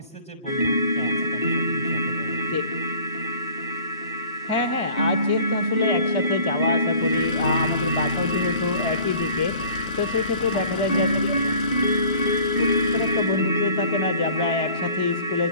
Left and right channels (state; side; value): inverted; both; correlation -0.48